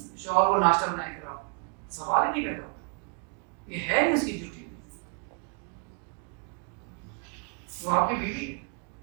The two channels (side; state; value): left; quieter; 38.1 dB